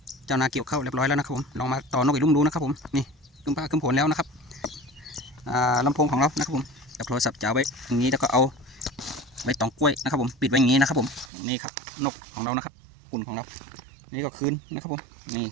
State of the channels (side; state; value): left; drops out; at 11.3 s